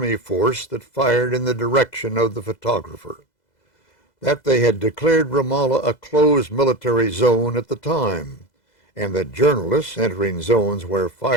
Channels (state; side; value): late; right; 2.0 ms